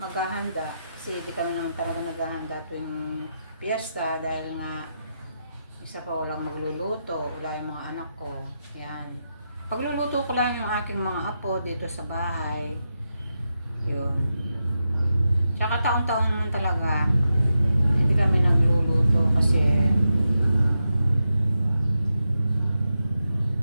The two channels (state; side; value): inverted; both; correlation -0.87